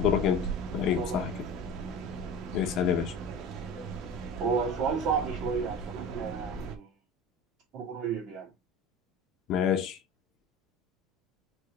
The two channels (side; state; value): both; normal; correlation 0.34